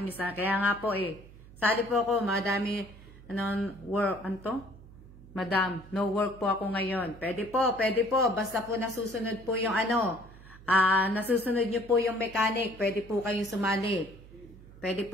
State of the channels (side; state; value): right; noise; hum, 20 dB below the sound